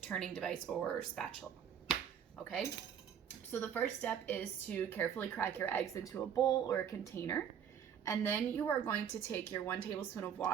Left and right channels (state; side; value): quieter; left; 8.4 dB